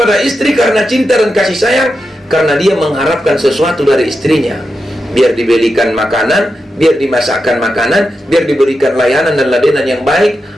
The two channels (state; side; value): normal; both; correlation 0.88